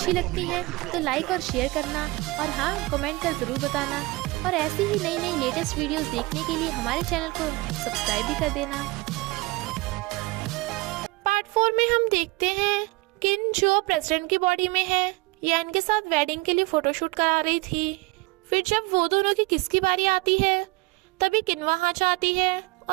लगती है तो लाइक और शेयर करना, और हाँ, कमेंट कर ज़रूर बताना। और ऐसी ही नई नई लेटेस्ट वीडियोस देखने के लिए हमारे चैनल को सब्सक्राइब भी कर देना। पार्ट 4 में हम देखते हैं किन जो प्रेसिडेंट की बॉडी में है या इनके साथ वेडिंग के लिए फोटोशूट करा रही थी। फिर जब वो दोनों की किसकी बारी आती है तभी किन वहाँ जाती है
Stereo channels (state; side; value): quieter; left; 22.9 dB